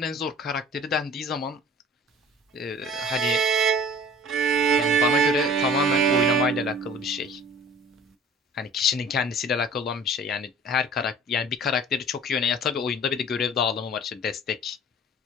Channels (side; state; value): both; normal; correlation 0.47